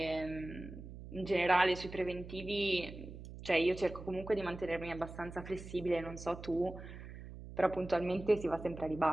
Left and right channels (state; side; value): noise; right; hum, 13 dB below the sound